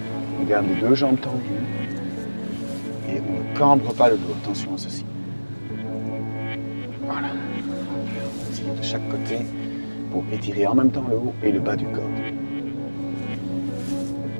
on garde les deux jambes tendues et on ne cambre pas le dos. Attention à ceci. Voilà. On tire de chaque côté pour étirer en même temps le haut et le bas du corps.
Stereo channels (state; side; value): inverted; both; correlation -1.00